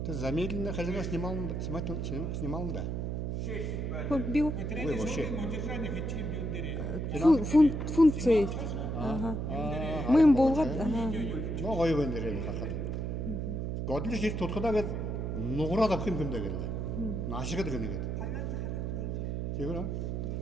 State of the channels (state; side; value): noise; right; hum, 2 dB below the sound